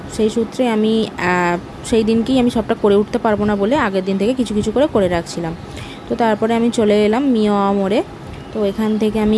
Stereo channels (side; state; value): both; identical; correlation 1.00